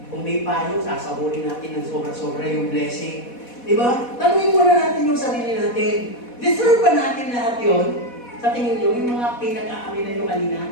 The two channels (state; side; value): late; right; 4.1 ms